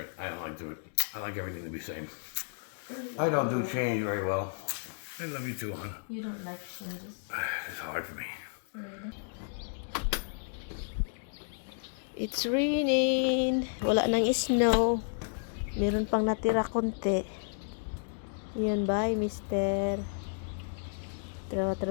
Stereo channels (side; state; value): right; silent; digital silence